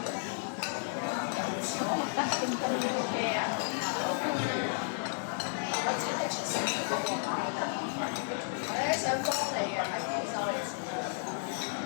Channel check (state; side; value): silent; right; digital silence